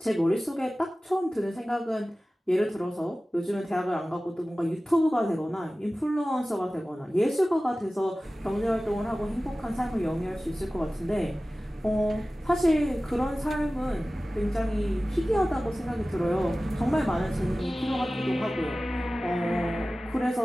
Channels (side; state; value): both; normal; correlation 0.97